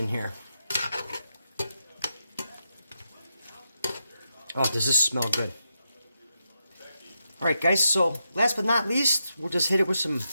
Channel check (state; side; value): inverted; both; correlation -0.85